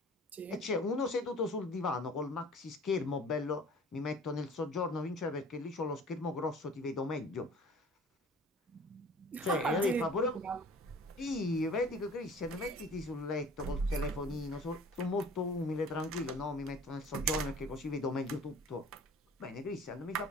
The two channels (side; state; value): both; normal; correlation 0.47